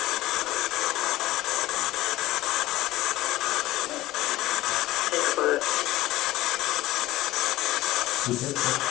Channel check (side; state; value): right; quieter; 16.7 dB